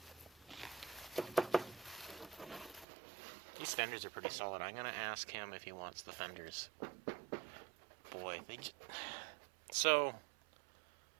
These fenders are pretty solid. I'm gonna ask him if he wants the fenders. Boy, so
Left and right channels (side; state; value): left; drops out; at 2.9 s